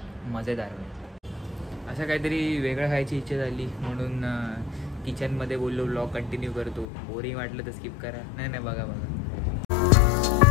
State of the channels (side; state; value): right; drops out; at 6.9 s